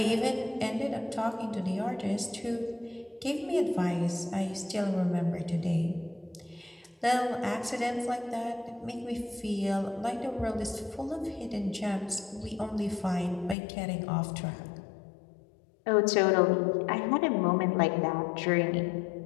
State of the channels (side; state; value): right; drops out; at 13.6 s